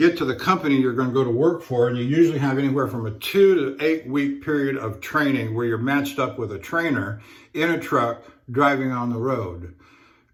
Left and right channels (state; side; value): identical; both; correlation 1.00